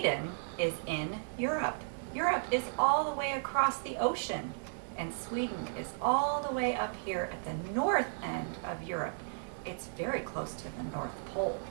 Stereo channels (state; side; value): silent; left; digital silence